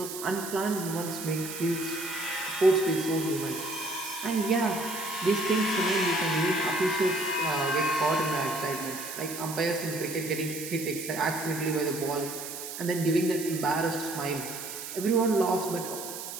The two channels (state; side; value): noise; right; hiss, 8 dB below the sound